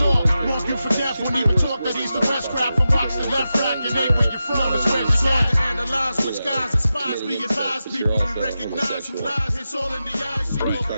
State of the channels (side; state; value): both; inverted; correlation -0.91